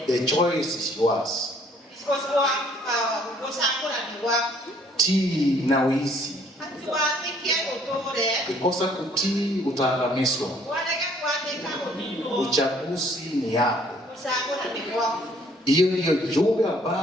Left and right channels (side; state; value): both; normal; correlation 0.61